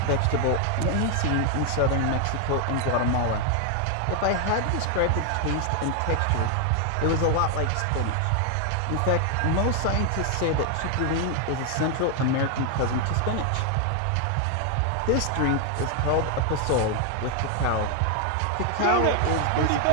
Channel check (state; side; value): different; both; correlation 0.01